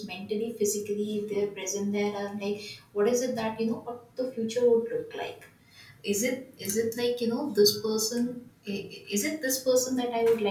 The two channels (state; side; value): identical; both; correlation 1.00